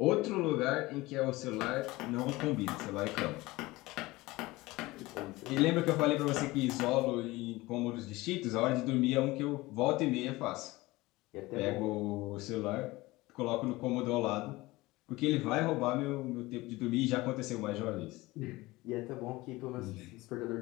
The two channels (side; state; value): right; quieter; 20.3 dB